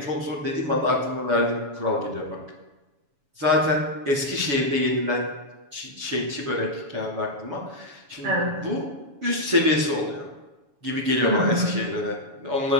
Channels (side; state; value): left; late; 7.1 ms